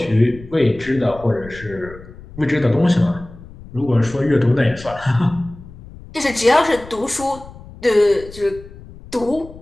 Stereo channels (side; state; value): left; noise; rumble, 18 dB below the sound